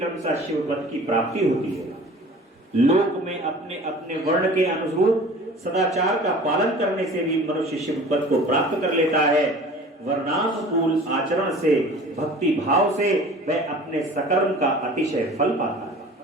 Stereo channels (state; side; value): normal; both; correlation 0.43